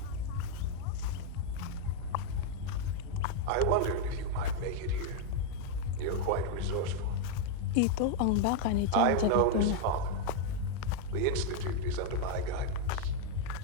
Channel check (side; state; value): both; different; correlation 0.00